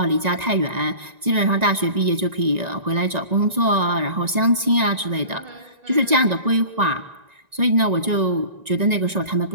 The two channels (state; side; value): late; left; 1.9 ms